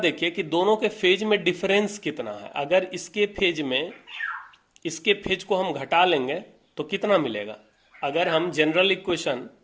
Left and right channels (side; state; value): both; identical; correlation 1.00